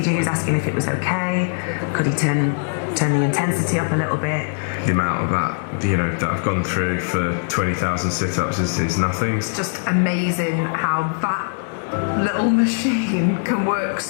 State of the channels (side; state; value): right; silent; digital silence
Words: he was asking if it was okay. Could he turn the intensity up a little bit? The amount of that, that I've gone through for 20,000 sit-ups is nothing. It's just amazing how that little machine can work